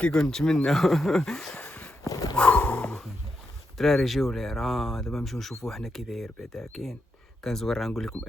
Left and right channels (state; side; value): normal; both; correlation 0.84